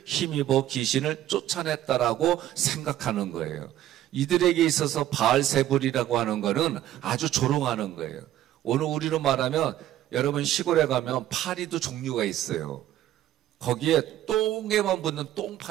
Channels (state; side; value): quieter; left; 12.9 dB